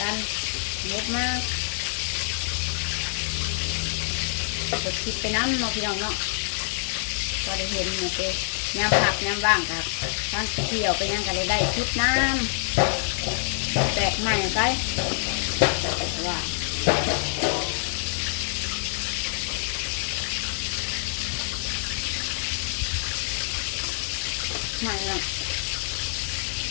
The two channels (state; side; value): silent; right; digital silence